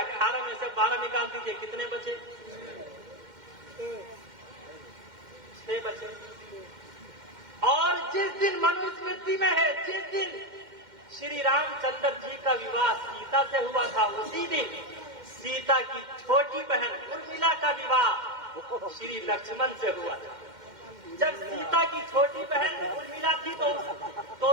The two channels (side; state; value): left; late; 2.1 ms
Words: میں سے 12 نکال دیجئے، کتنے بچے؟ 6 بچے. اور جس دن منو اسمرتی میں ہے، جس دن شری رام چندر جی کا وواہ سیتا سے ہوا تھا، اسی دن سیتا کی چھوٹی بہن ارملا کا وواہ شری لکشمن سے ہوا تھا. جب سیتا کی چھوٹی بہن ارملا تھی تو